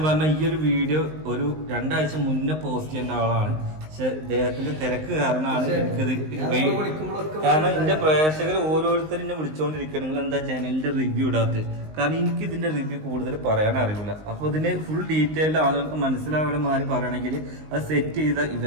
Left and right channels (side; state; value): left; late; 19 ms